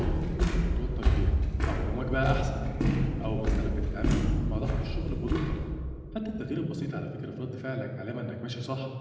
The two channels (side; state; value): both; identical; correlation 1.00